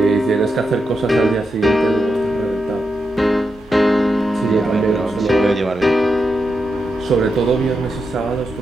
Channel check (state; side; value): normal; both; correlation 0.86